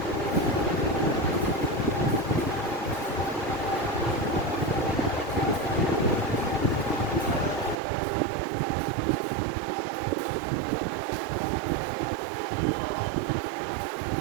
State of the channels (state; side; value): drops out; left; at 7.8 s